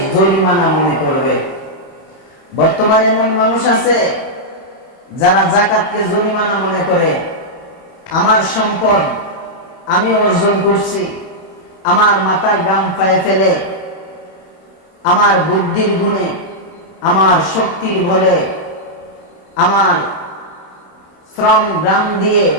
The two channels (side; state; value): right; late; 31 ms